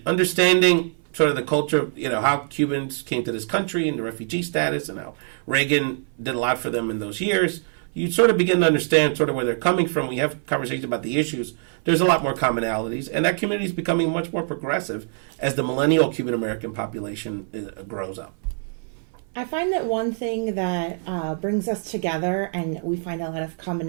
understanding sort of the culture, how Cubans came to this country and the refugee status and how Reagan did a lot for them in those years, you sort of begin to understand sort of where they're coming from. We have conversations about the issues. There's a lot more commonalities, and that community is becoming much more progressive as the millennial Cuban American population grows up. I find that one thing that brings us together, and we find a lot of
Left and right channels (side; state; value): left; silent; 57 dB below the other